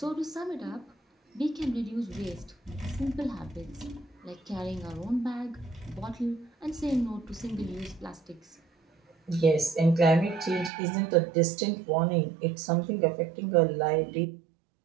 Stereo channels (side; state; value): left; drops out; at 10.7 s